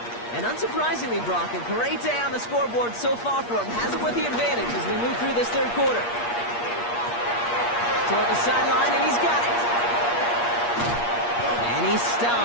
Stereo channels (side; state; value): right; late; 8.5 ms